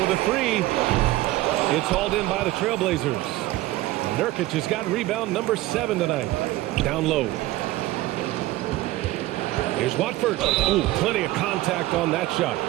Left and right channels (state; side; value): quieter; left; 17.3 dB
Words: with a 3. It's hauled in by the Trailblazers. Nurkic has got rebound number 7 tonight. Down low. Here's Watford. Ooh, plenty of contact on that shot.